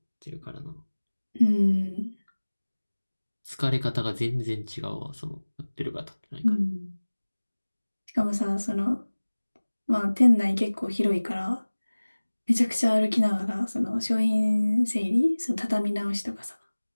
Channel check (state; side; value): inverted; both; correlation -1.00